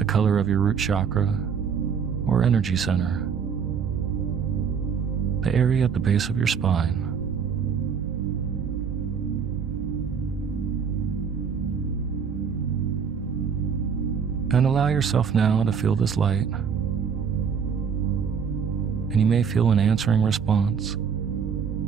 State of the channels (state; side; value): quieter; left; 6.7 dB